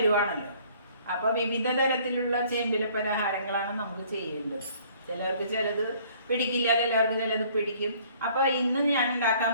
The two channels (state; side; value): inverted; both; correlation -0.57